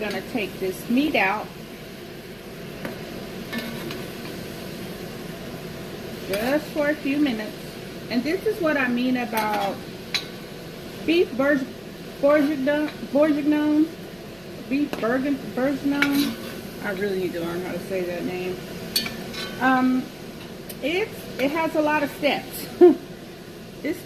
to take this meat out. Just for a few minutes. And this is what I mean about beef bourguignon. Beef bourguignon. I really need to learn how to say that name. It has a lot of steps. It's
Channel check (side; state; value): left; noise; hum, 29 dB below the sound